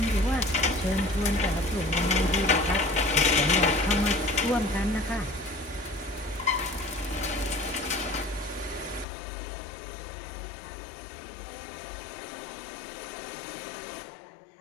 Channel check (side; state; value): right; drops out; at 9.1 s